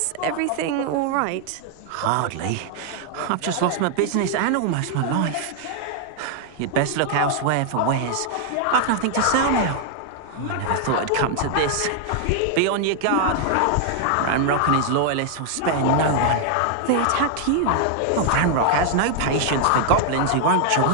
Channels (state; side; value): different; both; correlation 0.00